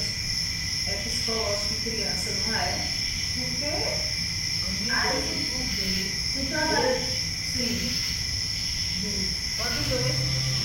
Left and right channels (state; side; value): identical; both; correlation 1.00